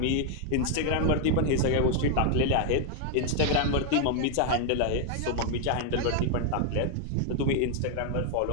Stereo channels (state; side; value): different; both; correlation 0.00